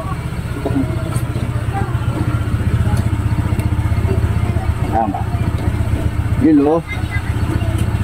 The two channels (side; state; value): both; identical; correlation 1.00